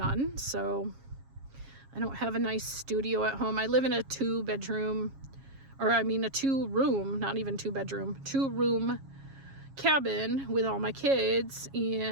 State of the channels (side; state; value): left; late; 7.3 ms